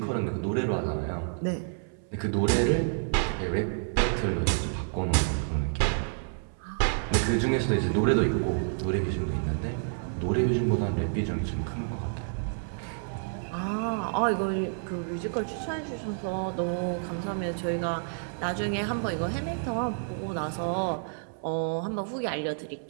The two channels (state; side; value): silent; left; 57 dB below the other